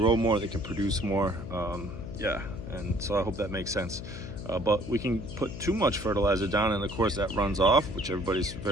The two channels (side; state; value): left; noise; hum, 10 dB below the sound